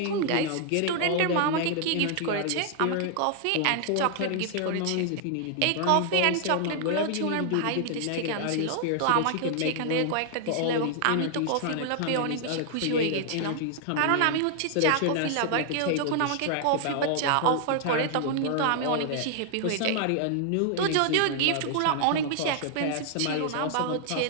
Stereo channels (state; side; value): different; both; correlation 0.00